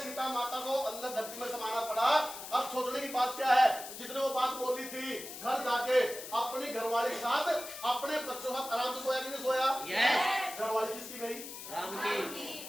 सीता माता को अंदर धरती में समाना पड़ा। अब सोचने की बात क्या है, जिसने वो बात बोली थी घर जाके अपनी घरवाली के साथ अपने बच्चों के साथ आराम से सोया कि नहीं सोया? घरवाली किसकी गई? राम की।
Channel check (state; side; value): noise; left; hiss, 11 dB below the sound